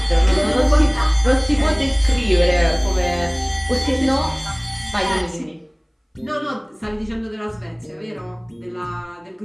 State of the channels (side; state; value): both; identical; correlation 1.00